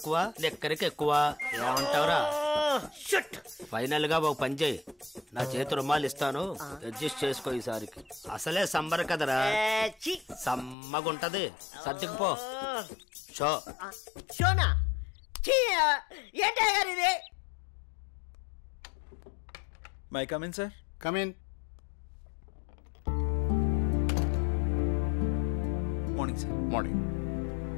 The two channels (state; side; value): drops out; right; at 10.8 s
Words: లెక్కరికి ఎక్కువ. ఏమంటావురా? ఫైనల్ గా ఒక పని చేయి, నా చేతి రుమాలు ఇస్తాను, అడ్జస్ట్ చేసుకో ఈసారికి. అసలే సంబర కదరా, సమ్మగుంటది. సర్దుకుపో. షోనా ఏంటి అయ్యగారు ఇది? May come in sir. Come in. Morning sir. Morning.